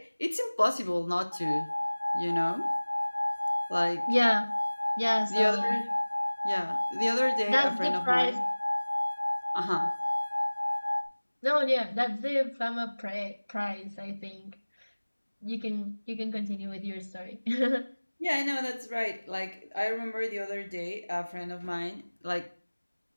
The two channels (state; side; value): inverted; both; correlation -1.00